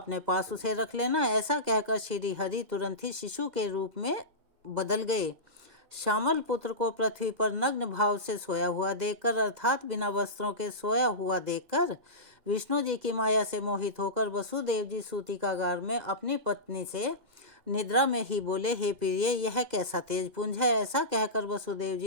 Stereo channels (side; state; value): left; late; 2.0 ms